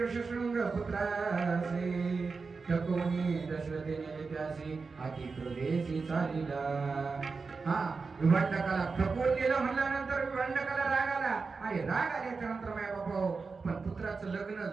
ऋषशृंग पुत्रासी ठकवून दशरथेने त्यासी अति क्रोधेसी चालिला. विभांडकाला ठकवून दिलं म्हणल्यानंतर विभांडकाला राग आला आणि राग आल्याच्या नंतर माय बाबा पण पुत्राचं लग्न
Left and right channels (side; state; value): left; quieter; 4.6 dB